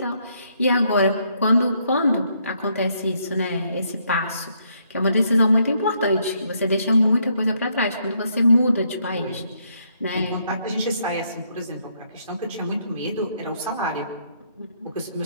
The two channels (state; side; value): inverted; both; correlation -0.73